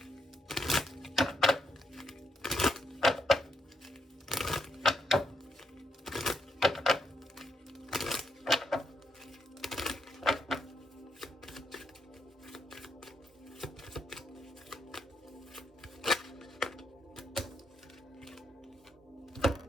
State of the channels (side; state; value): both; normal; correlation 0.79